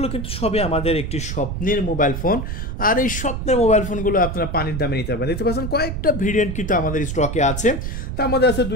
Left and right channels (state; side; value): noise; right; rumble, 4 dB below the sound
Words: কিন্তু সবই আমাদের একটি স্বপ্নের মোবাইল ফোন। আর এই স্বপ্নের মোবাইল ফোনগুলো আপনারা পানির দামে নিতে পারবেন। দেখতে পাচ্ছেন কয়েকটা ভেরিয়েন্ট কিন্তু আমাদের স্টকে আছে। তার মধ্যে আছে